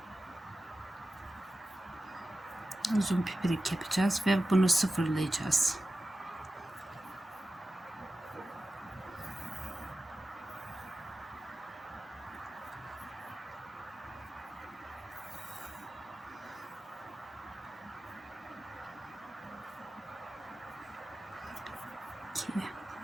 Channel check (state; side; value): normal; both; correlation 0.93